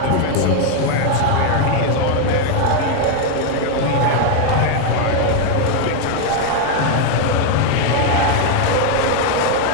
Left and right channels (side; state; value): both; different; correlation 0.01